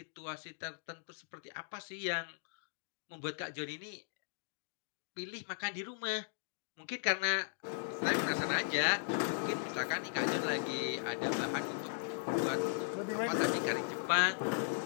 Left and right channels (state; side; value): silent; right; digital silence